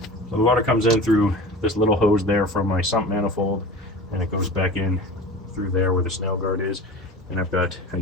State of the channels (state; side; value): normal; both; correlation 0.36